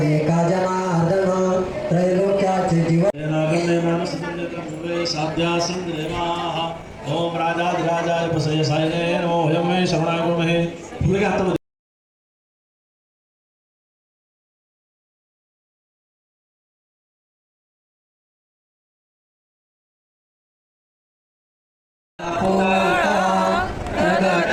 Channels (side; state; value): both; identical; correlation 1.00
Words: एका जनार्दन त्रैलोक्याचे जीवन ओम राजाधिराजाय प्रसय सायने नमो हयं मे शरणाय गुरुमहे पुढे घातलं